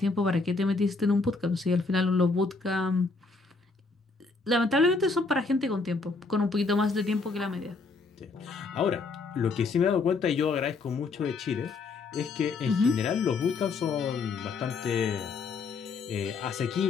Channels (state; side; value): quieter; right; 4.0 dB